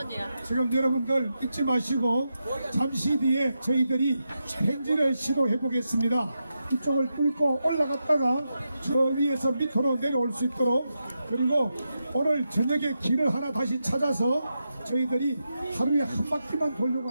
지금 여러분들 잊지 마시고 잠시 뒤에 저희들이 행진을 시도해 보겠습니다. 이쪽을 뚫고 올라갔다가 저 위에서 밑으로 내려올 수 있도록, 그리고 오늘 저녁에 길을 하나 다시 찾아서 저희들이 하루에 한 바퀴만 돌려고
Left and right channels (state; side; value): inverted; both; correlation -0.88